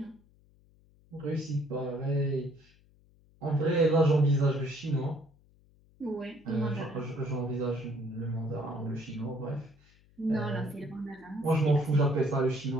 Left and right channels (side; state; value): left; noise; hum, 30 dB below the sound